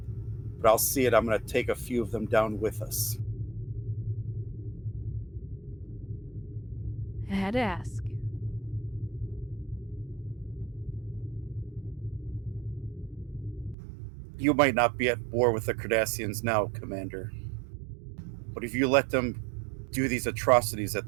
but I'll see it. I'm going to take a few of them down with us. I had to ask. You might not be at war with the Cardassians now, Commander. But if you let them do these atrocities that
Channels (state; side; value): drops out; left; at 13.8 s